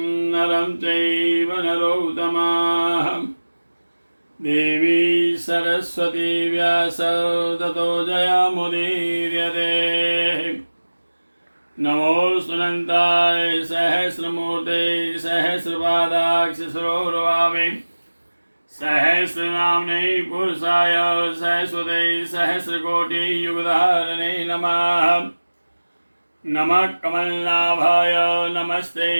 नरं चैव नरोत्तमः देवी सरस्वती व्यासो ततो जयमुदीर्यते। नमोऽस्तुनन्ताय सहस्रमूर्ते सहस्रपादाक्षसरोर्वावे सहस्रनाम्ने पुरुषाय सहस्वते सहस्रकोटियुगधारणे नमः। नमः कमलनाभाय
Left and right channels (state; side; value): inverted; both; correlation -1.00